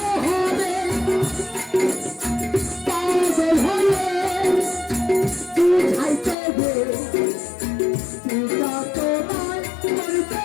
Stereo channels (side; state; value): right; drops out; at 6.4 s